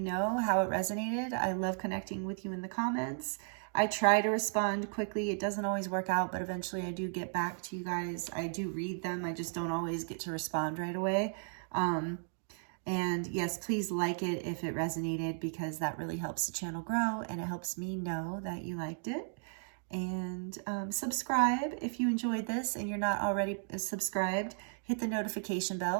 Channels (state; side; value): silent; left; 55 dB below the other